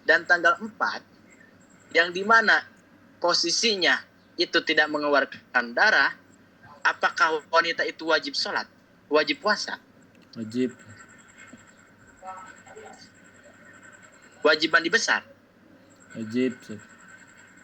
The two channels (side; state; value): both; identical; correlation 1.00